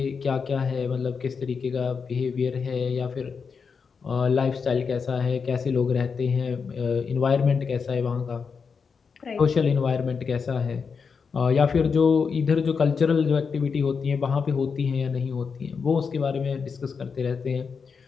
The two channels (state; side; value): quieter; right; 5.7 dB